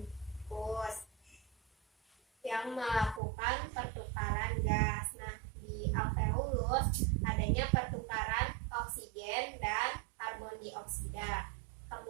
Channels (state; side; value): drops out; left; at 3.2 s